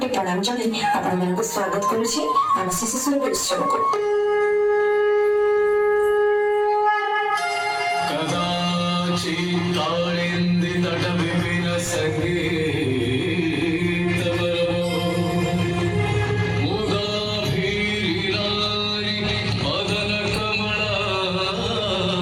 ପ୍ରଣାମ ଜଣାଇ ଆପଣମାନଙ୍କୁ ସ୍ୱାଗତ କରୁଛି ଆମ ଶିଶୁ ସୁରଭି ଉତ୍ସବକୁ।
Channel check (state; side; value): identical; both; correlation 1.00